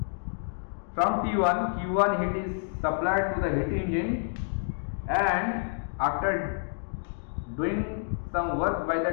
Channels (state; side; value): silent; right; digital silence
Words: From T1, Q1 heat is supplied to the heat engine, and after doing some work by